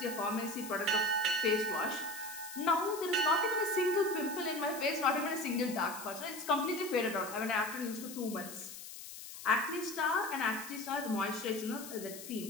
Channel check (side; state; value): left; noise; hiss, 12 dB below the sound